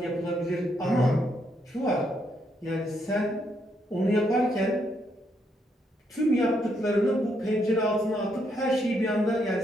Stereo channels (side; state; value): both; normal; correlation 0.76